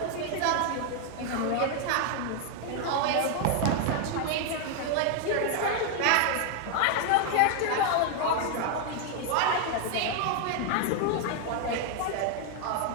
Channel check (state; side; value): different; both; correlation 0.00